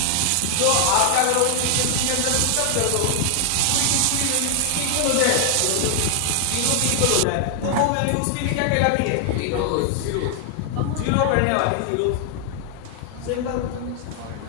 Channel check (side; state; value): both; different; correlation 0.00